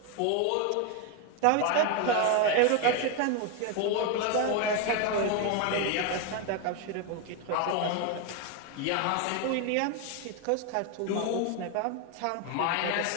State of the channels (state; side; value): different; both; correlation 0.02